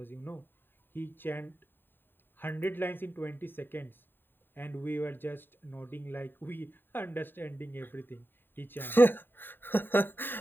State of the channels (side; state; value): right; late; 0.096 ms